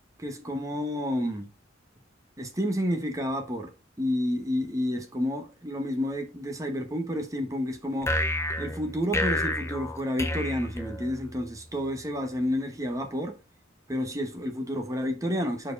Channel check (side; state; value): both; normal; correlation 0.70